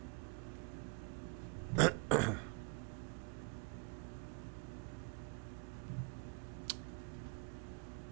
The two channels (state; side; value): quieter; left; 33.2 dB